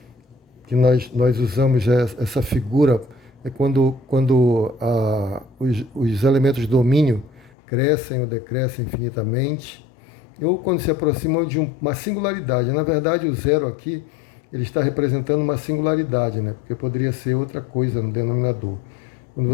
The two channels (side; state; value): right; drops out; at 7.5 s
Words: que nós usamos, essa figura, é quando os elementos do domínio crescem ou decrescem infinitamente, ou quando se aproximam de uma singularidade. Na verdade, o zero aqui ele está representando uma singularidade, né? Porque poderia ser outra coisa no denominador. Quando